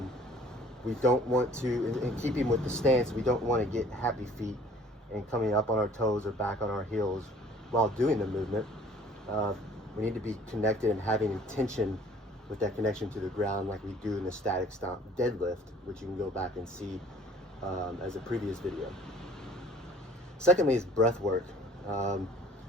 We don't want to, in keeping with the stance, we don't want to get happy feet and coming up on our toes or back on our heels while doing the movement. We need to be connected and having intention with that connection to the ground, like we do in the static stomp deadlift, which you can go back and see as a previous video. Secondly is breath work.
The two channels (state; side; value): normal; both; correlation 0.53